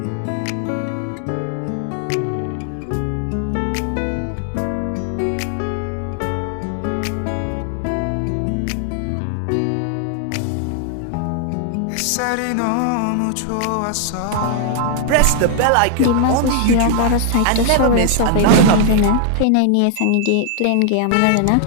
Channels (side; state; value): both; different; correlation 0.00